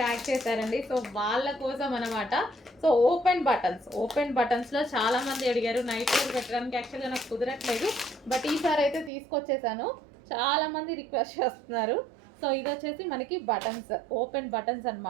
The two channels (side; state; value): left; drops out; at 9.1 s